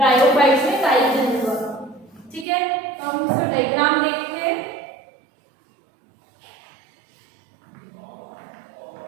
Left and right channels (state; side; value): drops out; left; at 2.5 s